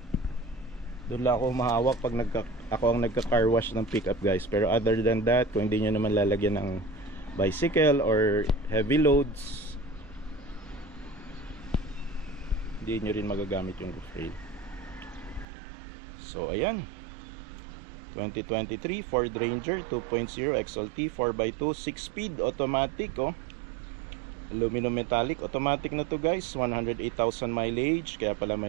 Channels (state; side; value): drops out; left; at 15.5 s